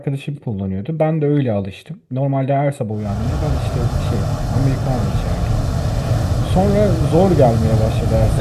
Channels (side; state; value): both; identical; correlation 1.00